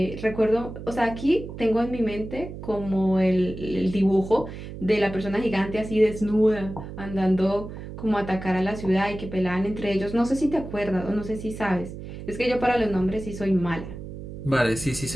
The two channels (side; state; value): right; noise; hum, 11 dB below the sound